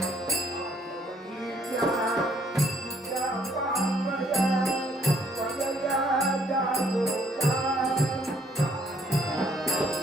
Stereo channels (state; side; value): normal; both; correlation 0.66